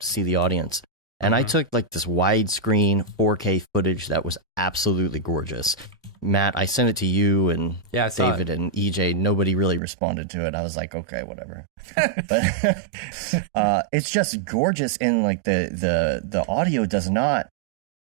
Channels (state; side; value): drops out; left; at 9.8 s